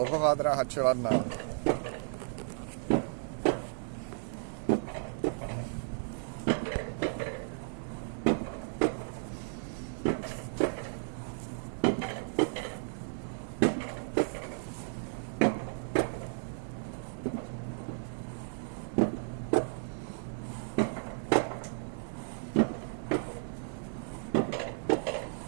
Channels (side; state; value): left; silent; digital silence